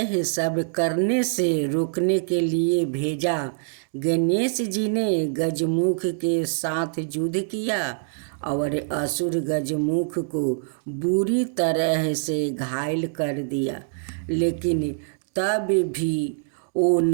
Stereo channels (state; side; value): silent; left; digital silence